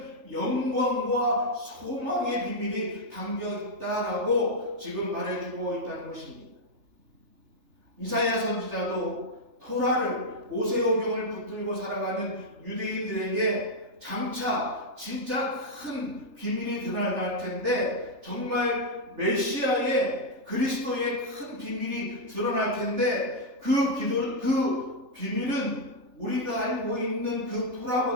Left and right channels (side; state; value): left; late; 3.4 ms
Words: 영광과 소망의 비밀이 담겨 있다라고 지금 말해주고 있다는 것입니다. 이사야 선지자도 토라를 모세오경을 붙들고 살아가는 유대인들에게 장차 진짜 큰 비밀이 드러날 텐데 정말 메시아의 그리스도의 큰 비밀이 드러날 텐데 그 비밀은 우리가 알고 있는 그